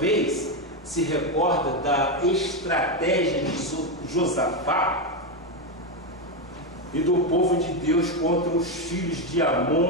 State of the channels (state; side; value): normal; both; correlation 0.09